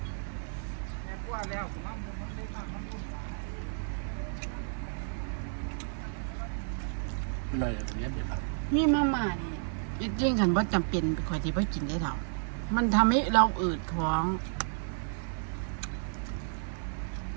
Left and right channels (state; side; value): silent; left; digital silence